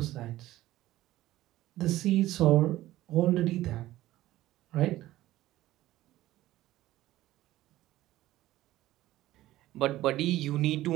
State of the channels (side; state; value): left; quieter; 15.6 dB